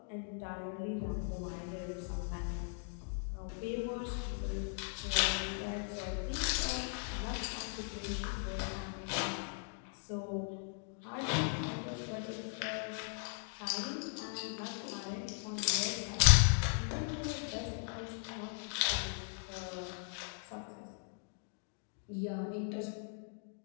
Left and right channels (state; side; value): silent; right; 52 dB below the other